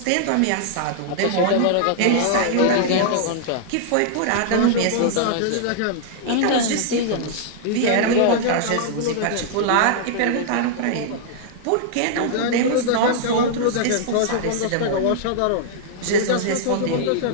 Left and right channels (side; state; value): both; different; correlation -0.01